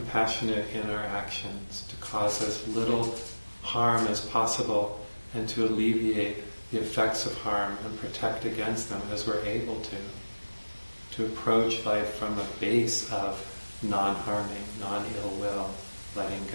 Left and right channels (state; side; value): inverted; both; correlation -1.00